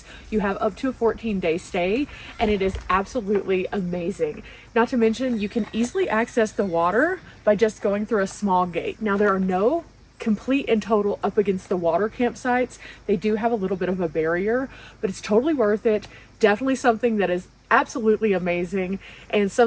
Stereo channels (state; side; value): identical; both; correlation 1.00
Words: You have up to a 14-day stay, and it is absolutely amazing. Not to mention, you can easily access the water by just going through a small gate. Now, there are no complete and total up against the water campsites. They do have a little bit of a barrier, but it's totally worth it. Definitely something that is absolutely amazing and